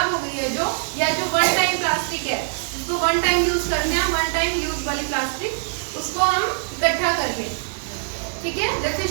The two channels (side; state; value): left; silent; 64 dB below the other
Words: हो गई है जो, या जो वन टाइम प्लास्टिक है, उसको वन टाइम यूज करना है, वन टाइम यूज वाली प्लास्टिक, उसको हम इकट्ठा कर लें, ठीक है? जैसे